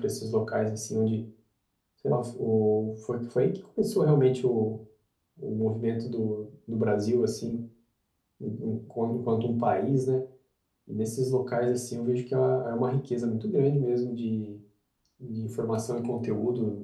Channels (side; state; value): both; identical; correlation 1.00